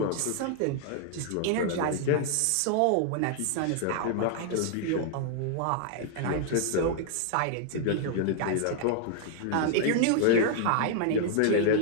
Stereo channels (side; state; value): both; different; correlation 0.00